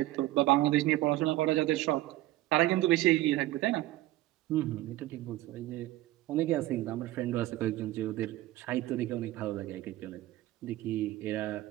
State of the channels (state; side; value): quieter; left; 16.5 dB